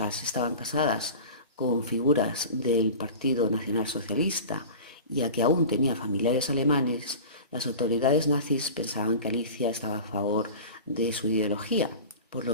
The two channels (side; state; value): both; inverted; correlation -0.35